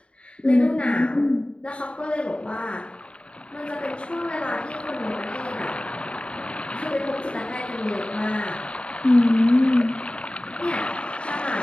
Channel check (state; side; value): late; right; 0.058 ms